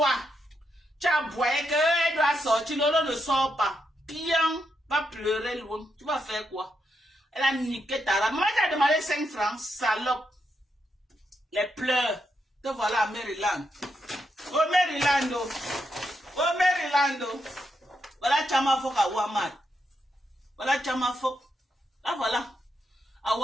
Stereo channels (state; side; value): normal; both; correlation 0.82